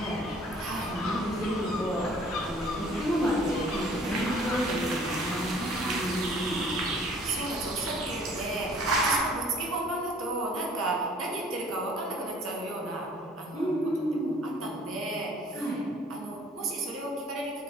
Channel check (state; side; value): normal; both; correlation 0.54